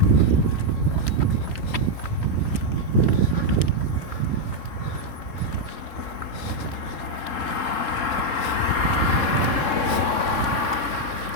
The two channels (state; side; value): late; right; 3.7 ms